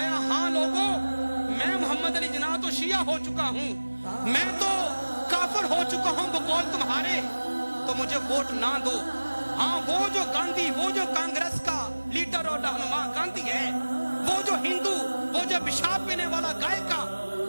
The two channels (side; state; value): both; inverted; correlation -1.00